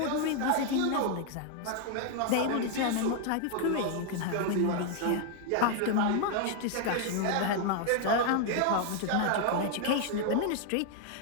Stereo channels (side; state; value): both; different; correlation 0.00